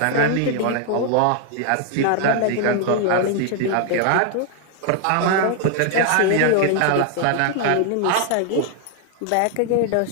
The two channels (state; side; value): different; both; correlation 0.00